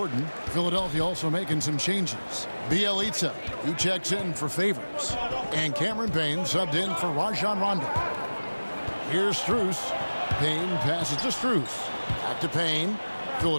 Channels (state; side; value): inverted; both; correlation -1.00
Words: Philadelphia also making some changes. Bjelica, who checks in for Favors. And Cameron Payne subbed in for Rajon Rondo. Here's Strus. Payne passes to Strus. Back to Payne.